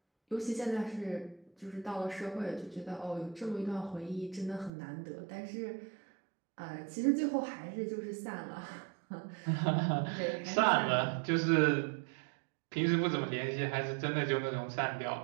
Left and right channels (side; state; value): left; drops out; at 4.7 s